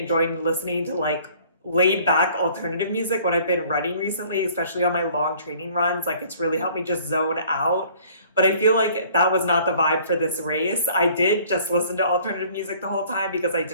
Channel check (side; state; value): both; inverted; correlation -0.54